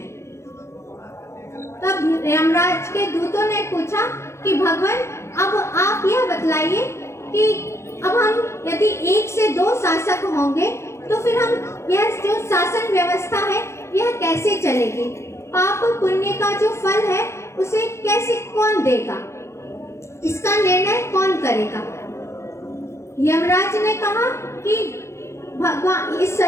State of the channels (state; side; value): late; right; 0.13 ms